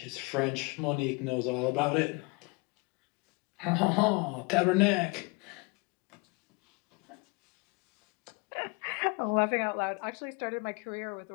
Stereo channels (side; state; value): right; quieter; 29.6 dB